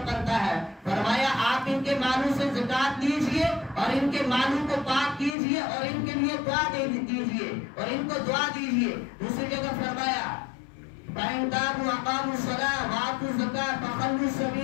بنتا ہے۔ فرمایا آپ ان کے مالوں سے زکات دیجئے اور ان کے مالوں کو پاک کیجئے اور ان کے لیے دعا دیجئے اور ان کو دعا دیجئے۔ دوسری جگہ فرمایا فَإِن تَابُوا وَأَقَامُوا الصَّلَاةَ وَآتُوا الزَّکَاةَ فَخَلُّوا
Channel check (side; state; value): right; drops out; at 5.4 s